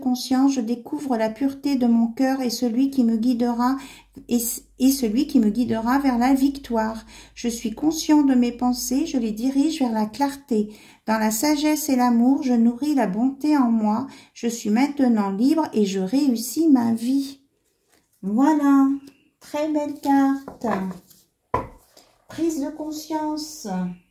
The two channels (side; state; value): both; identical; correlation 1.00